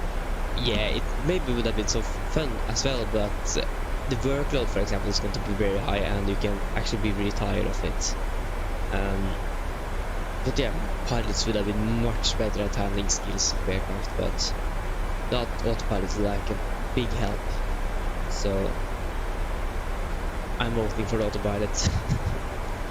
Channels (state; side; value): identical; both; correlation 1.00